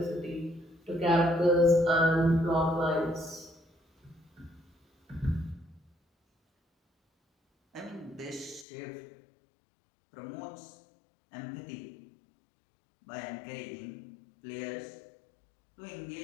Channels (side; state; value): right; drops out; at 8.7 s